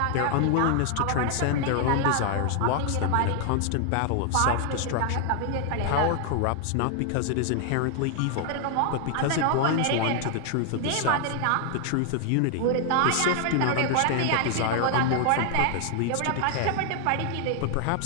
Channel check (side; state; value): both; different; correlation 0.00